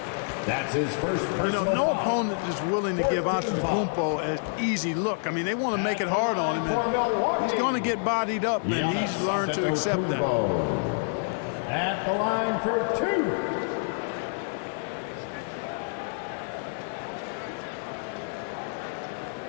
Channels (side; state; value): right; silent; digital silence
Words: That's his first personal You know, no foul. opponent is willing to give Antetokounmpo an easy look. I mean, they want to make it hard on him, and he's going to get bodied up, and he's learned to accept that. At the line for 2.